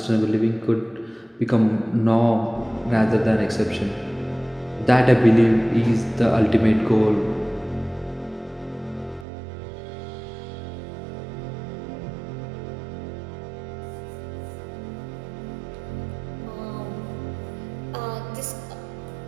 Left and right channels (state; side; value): drops out; left; at 9.2 s